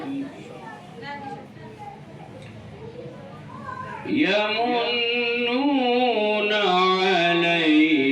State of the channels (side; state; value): both; identical; correlation 1.00